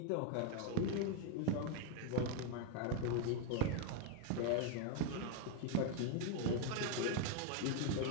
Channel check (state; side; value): different; both; correlation 0.01